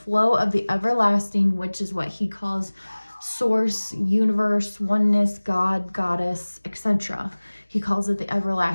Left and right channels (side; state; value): both; inverted; correlation -1.00